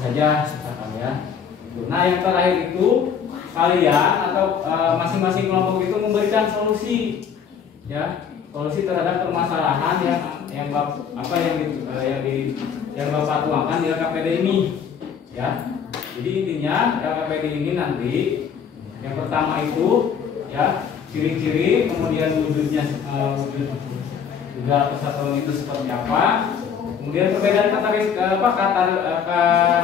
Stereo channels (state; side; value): quieter; right; 7.2 dB